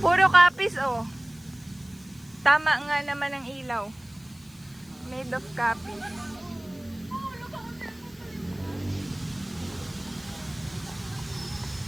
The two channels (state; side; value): noise; left; hiss, 26 dB below the sound